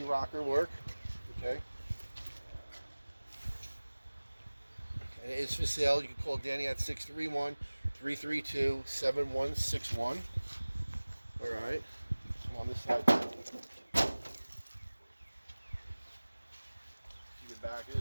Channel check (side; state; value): both; inverted; correlation -1.00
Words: rocker work. Okay. And it is for sale. You can call Danny at 631-332-7161. All right. I'm on this side. See the back. It